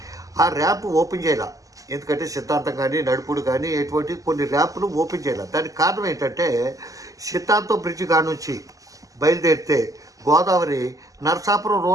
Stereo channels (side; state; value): left; late; 0.17 ms